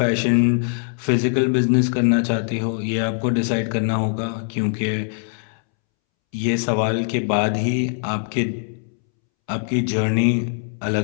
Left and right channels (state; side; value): silent; right; 65 dB below the other